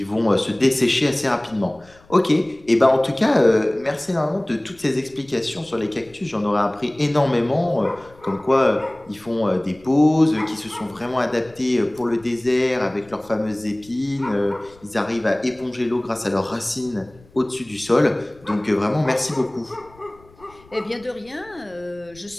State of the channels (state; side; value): noise; left; rumble, 27 dB below the sound